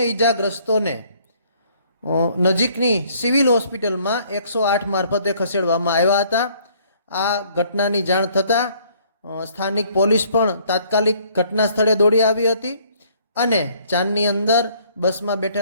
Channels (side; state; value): both; inverted; correlation -0.61